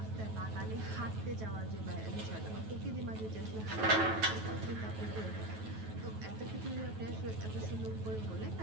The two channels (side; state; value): left; late; 9.3 ms